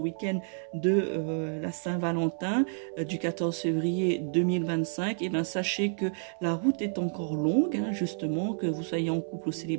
de la Saint-Valentin, du 14 février 2025, et bien sachez que la route est encore longue, justement, que vous soyez en couple ou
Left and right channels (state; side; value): silent; left; 58 dB below the other